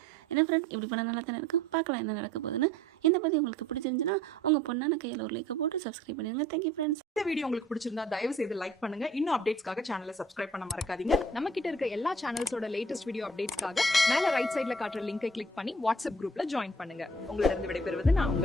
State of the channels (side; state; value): both; normal; correlation 0.54